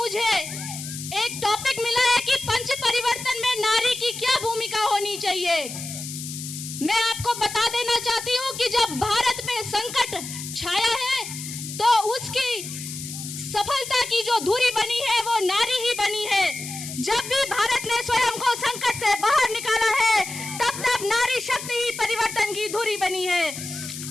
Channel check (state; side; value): noise; left; hiss, 9 dB below the sound